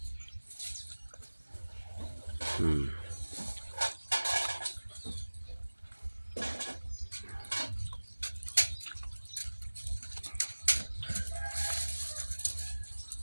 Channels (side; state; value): both; inverted; correlation -1.00